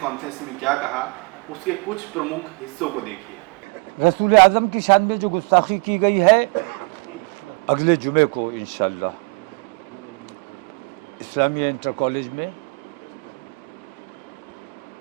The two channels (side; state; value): left; quieter; 30.5 dB